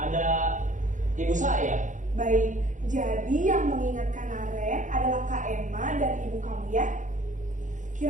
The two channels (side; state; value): left; late; 0.37 ms